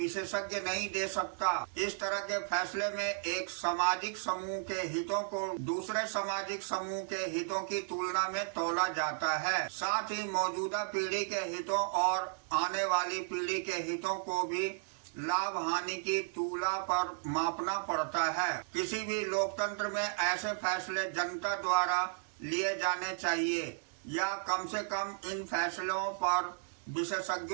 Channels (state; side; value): silent; left; digital silence